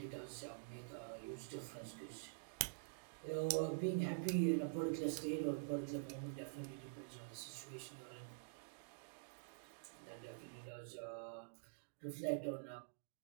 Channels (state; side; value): quieter; left; 35.3 dB